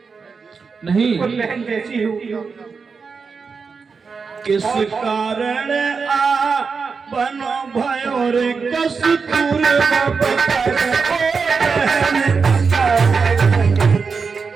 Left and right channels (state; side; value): quieter; left; 5.2 dB